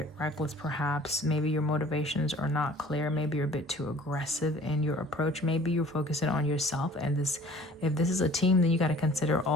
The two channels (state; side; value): normal; both; correlation 0.50